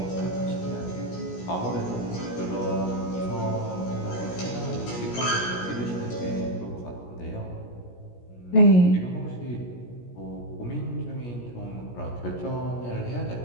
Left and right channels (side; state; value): right; late; 17 ms